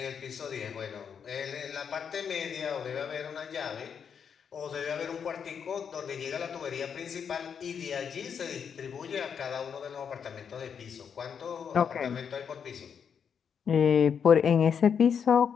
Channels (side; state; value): right; quieter; 7.2 dB